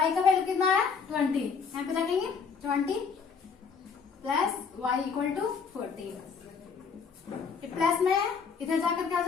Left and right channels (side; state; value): right; quieter; 5.9 dB